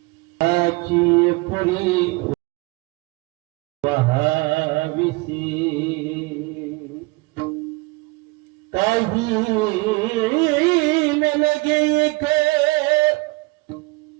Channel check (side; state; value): left; quieter; 25.0 dB